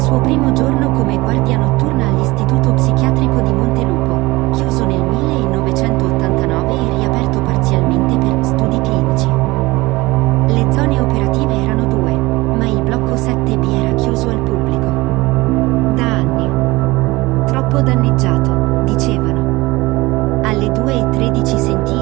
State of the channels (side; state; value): left; quieter; 21.2 dB